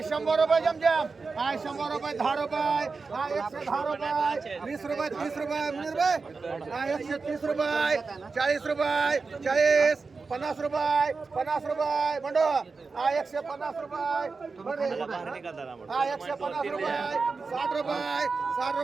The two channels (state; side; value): quieter; left; 4.4 dB